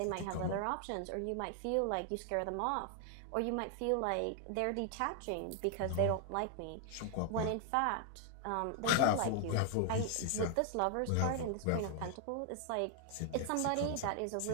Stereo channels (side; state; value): both; different; correlation 0.00